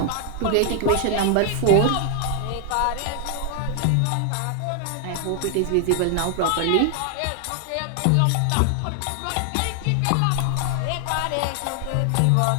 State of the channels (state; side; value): different; both; correlation 0.00